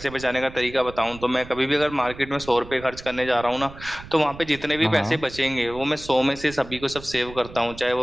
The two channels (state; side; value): noise; right; rumble, 16 dB below the sound